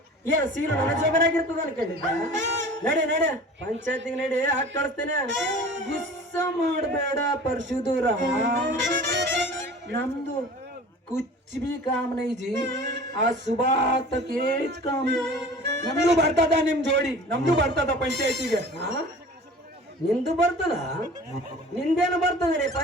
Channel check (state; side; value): normal; both; correlation 0.42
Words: ಏನ್ ಸೀಲು ನನ್ನ ಜೋಬರಾಗಿರ್ತದ ಅನ್ಕೊಂಡಿದ್ದ ನಡಿ ಪಂಚಾಯತಿಗೆ ನಡಿ ಹಾಕಿ ಕಳಿಸ್ತೇನೆ ಗುಸ್ಸ ಮಾಡಬೇಡ ಪರಶುದೂರ ನಮ್ದು ಕುಚ್ ಬಿ ಕಾಮ್ ನೈ ಜಿ ಆ ಸುಬಾ ತಕ್ ಏಜ್ ಕಾಮ್ ನಮ್ದು ಬರ್ತದ ನಿಮ್ ಜೋಡಿ ನಮ್ದು ಬರ್ತದ ಪಂಚಾಯತಿಗೆ ನಿಂದು ಬರ್ತದ ನಿಂದೇನು ಬರ್ತದೆ